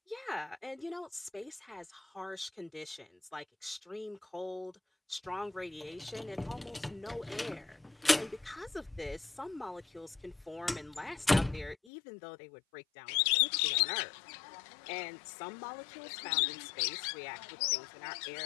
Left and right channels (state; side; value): drops out; right; at 11.8 s